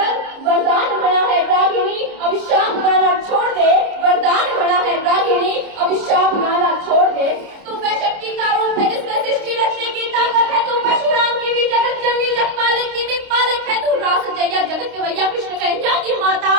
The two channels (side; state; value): left; late; 29 ms